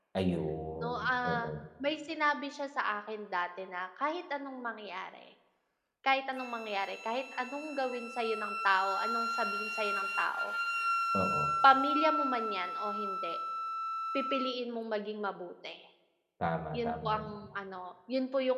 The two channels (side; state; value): both; identical; correlation 1.00